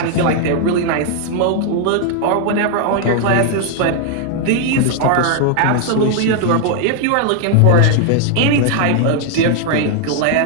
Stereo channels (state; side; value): different; both; correlation 0.00